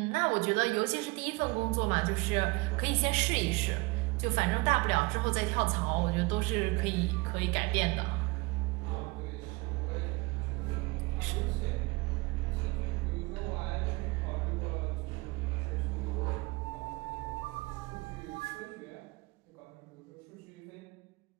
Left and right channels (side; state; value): left; quieter; 25.1 dB